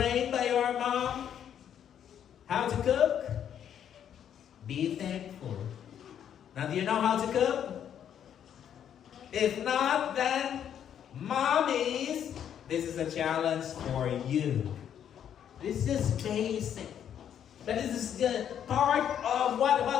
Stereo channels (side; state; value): right; quieter; 9.3 dB